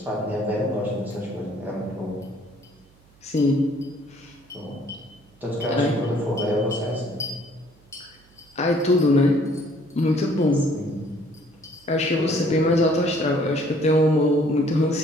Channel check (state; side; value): noise; right; hum, 30 dB below the sound